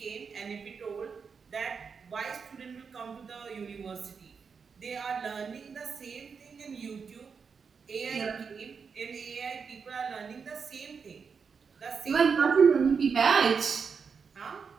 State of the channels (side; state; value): left; quieter; 5.8 dB